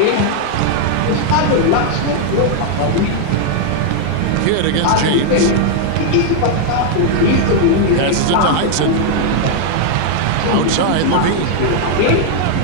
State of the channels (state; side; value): different; both; correlation 0.00